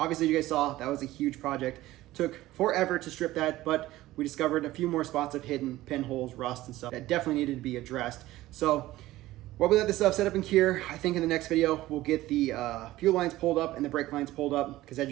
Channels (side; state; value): left; quieter; 16.5 dB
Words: you guys saw, that was a huge project. Took forever to strip that, but we discovered a few more spots of hidden pinholes, rust and stuff that definitely needed to be addressed. So while we let this stuff set up and cure, I think in the next video, we'll get the fuel lines pulled up and the brake lines pulled up, because as